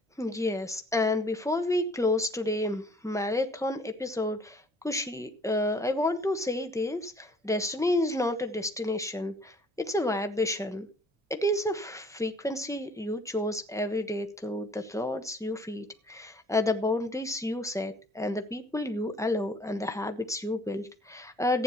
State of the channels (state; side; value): normal; both; correlation 0.56